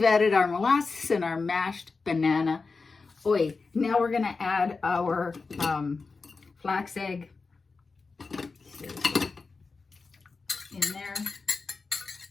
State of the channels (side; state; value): right; quieter; 4.3 dB